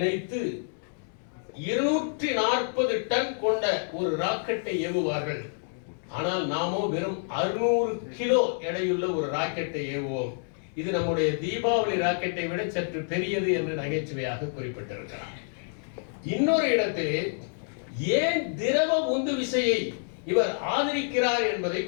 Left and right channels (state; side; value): silent; right; digital silence